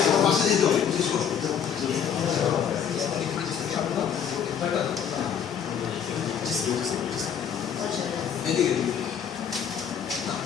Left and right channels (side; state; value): right; quieter; 8.0 dB